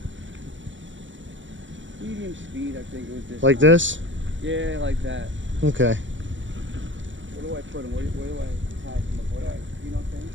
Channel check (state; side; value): late; left; 0.55 ms